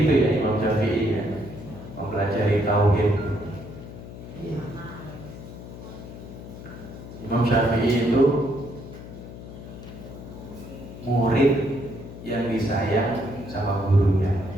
ya Imam Syafi'i ya, mempelajari tauhid. Imam Syafi'i itu murid yang disayang sama gurunya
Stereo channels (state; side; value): noise; left; hum, 13 dB below the sound